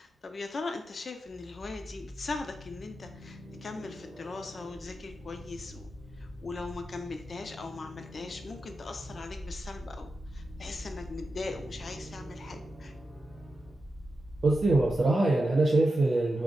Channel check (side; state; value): both; normal; correlation 0.90